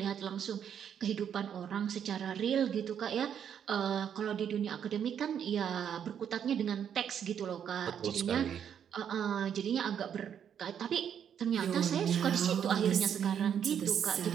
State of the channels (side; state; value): left; quieter; 8.6 dB